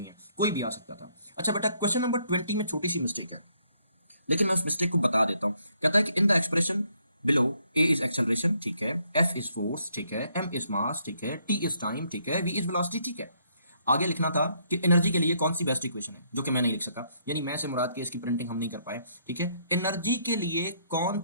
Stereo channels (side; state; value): both; inverted; correlation -0.71